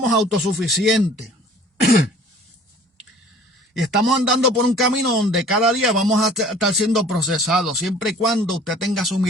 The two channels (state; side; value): normal; both; correlation 0.50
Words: autosuficientes. Y estamos andando por un camino donde cada día vamos a estar siendo procesados, siempre y cuando usted tenga su